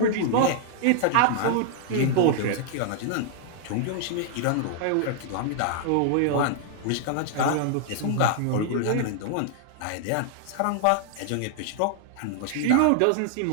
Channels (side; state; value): both; different; correlation 0.00